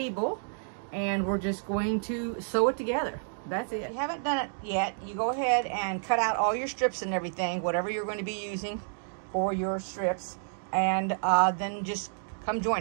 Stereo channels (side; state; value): left; silent; digital silence